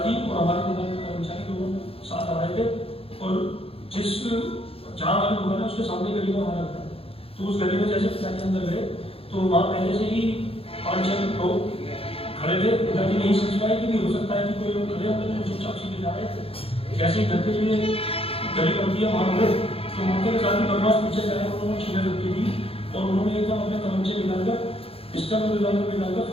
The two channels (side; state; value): right; late; 0.27 ms